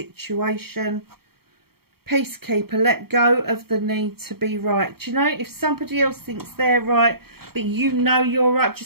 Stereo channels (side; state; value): left; late; 0.95 ms